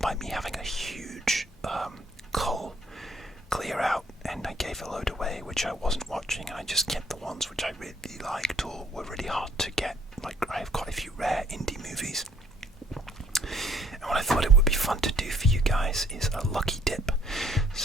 me having a huge cull clear out, and I gave a load away which I wasn't watching, and I just kept the ones which I really liked or were really hard to get. Like, I have quite a few rare indie movies, and what I thought it would be fun to do for you guys is a lucky dip.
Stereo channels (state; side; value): normal; both; correlation 0.62